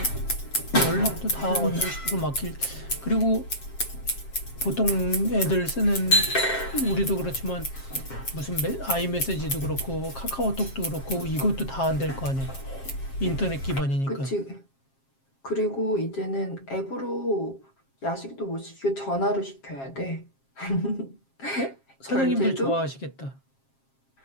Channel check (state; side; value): late; right; 7.4 ms